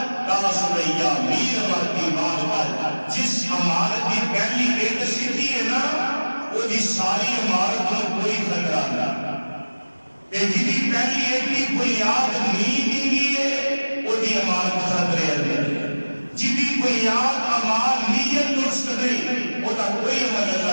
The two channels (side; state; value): both; inverted; correlation -1.00